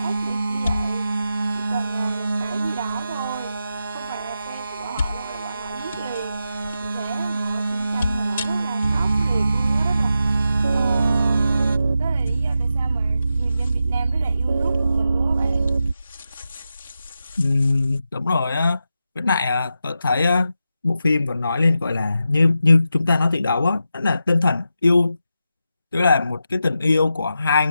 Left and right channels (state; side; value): inverted; both; correlation -0.88